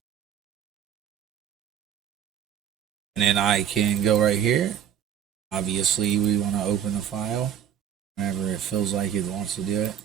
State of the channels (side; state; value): left; quieter; 9.3 dB